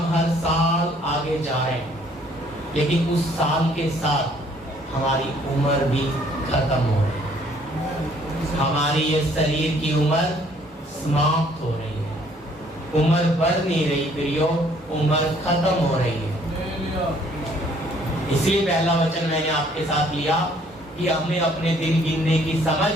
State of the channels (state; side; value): normal; both; correlation 0.61